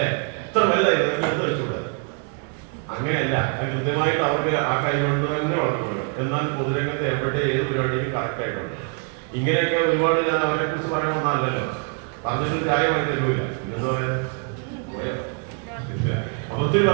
എത്ര വലുതായി എടുത്ത് കഴിച്ചൂടെ? അങ്ങനെയല്ല, അത് കൃത്യമായിട്ട് അവർക്ക് ആ കൈ കൊണ്ട് തന്നെ വളർത്തുന്നത്. എന്നാൽ പൊതുരംഗത്ത് എവിടെ ഏത് പരിപാടിയും കറക്റ്റ് ആയിട്ടുണ്ട്. ഇങ്ങനെയൊക്കെ ഒരുപാട് ഞാൻ അവരെ കുറിച്ച് പറയാൻ വന്നതല്ലോ, പറഞ്ഞിട്ട് ചായമായി തരൂല. എന്താ പറയാ അപ്പൊ ഒത്തിരി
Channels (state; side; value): quieter; left; 39.6 dB